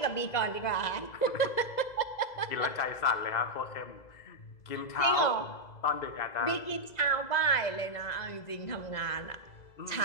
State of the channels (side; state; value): right; late; 2.0 ms